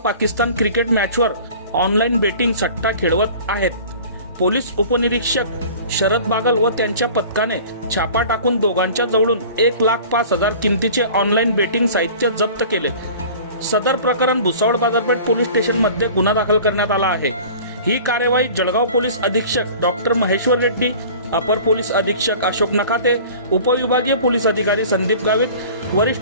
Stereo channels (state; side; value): inverted; both; correlation -0.43